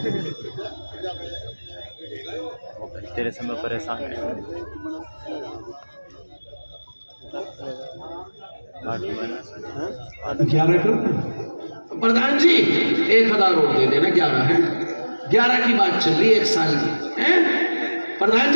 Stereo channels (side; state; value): both; inverted; correlation -1.00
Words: تیرے سے میں پریشان ہے. 11 کرو پردھان جی. 1,000 اور دے دینا. 11 ہے، 11 کی بات چل رہی ہے، 1 سال کی. پردھان